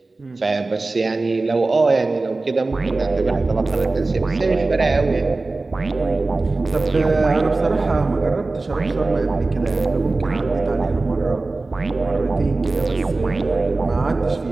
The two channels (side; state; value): left; quieter; 3.4 dB